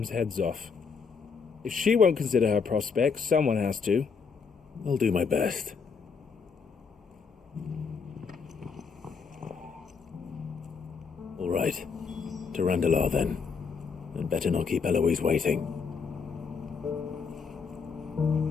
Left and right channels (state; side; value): quieter; right; 5.5 dB